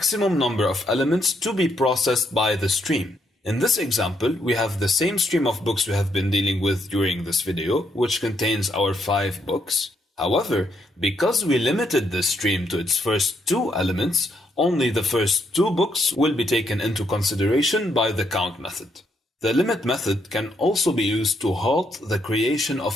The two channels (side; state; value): both; normal; correlation 0.75